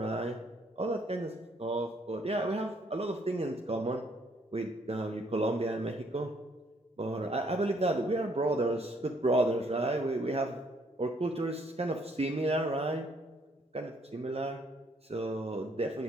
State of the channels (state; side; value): normal; both; correlation 0.67